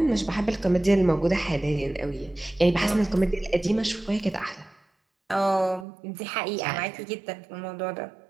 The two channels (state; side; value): drops out; left; at 5.9 s